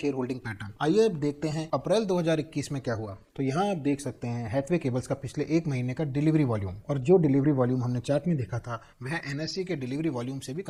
होल्डिंग पैटर्न। आइए अब देखते हैं अप्रैल 2021 में क्या हुआ। तो यहाँ आप देख सकते हैं हैथवे केबल्स का पिछले 1 महीने का डिलीवरी वॉल्यूम, और जो डिलीवरी वॉल्यूम हमने चार्ट में देखा था वह एनएससी के डिलीवरी वॉल्यूम से भी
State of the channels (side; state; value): both; identical; correlation 1.00